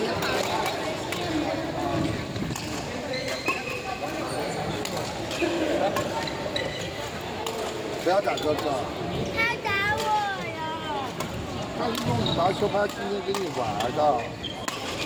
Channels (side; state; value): both; identical; correlation 1.00